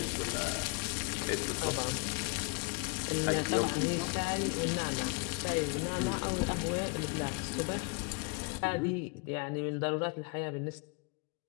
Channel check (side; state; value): right; quieter; 32.1 dB